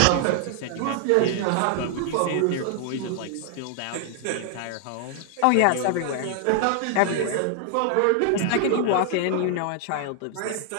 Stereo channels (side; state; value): both; different; correlation 0.00